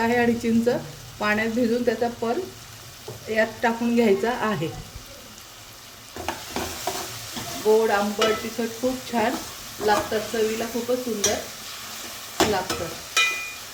आहे आणि चिंच पाण्यात भिजून त्याचा पण यात टाकून घ्यायचा आहे. गोड, आंबट, तिखट खूप छान लागतात. चवीला खूपच सुंदर लागतं.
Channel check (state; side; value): identical; both; correlation 1.00